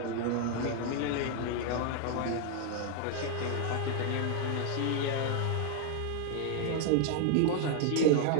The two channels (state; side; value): different; both; correlation 0.00